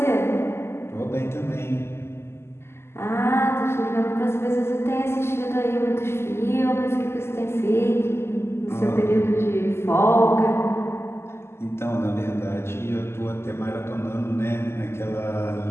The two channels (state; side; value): late; right; 0.12 ms